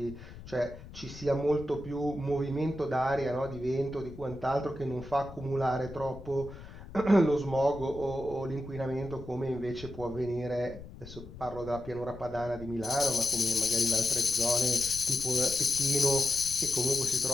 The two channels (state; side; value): noise; left; rumble, 15 dB below the sound